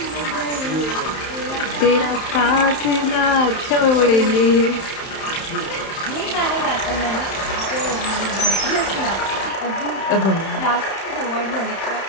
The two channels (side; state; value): right; late; 31 ms